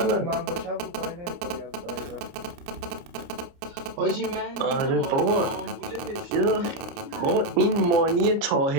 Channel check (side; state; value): left; late; 30 ms